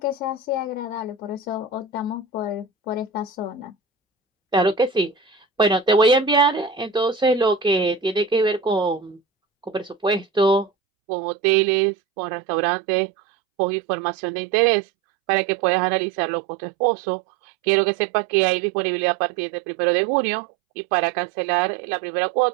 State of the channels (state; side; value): drops out; left; at 10.7 s